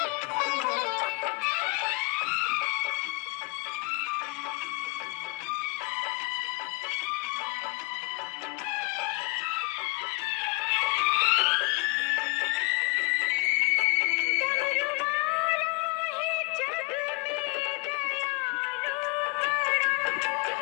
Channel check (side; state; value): right; quieter; 27.8 dB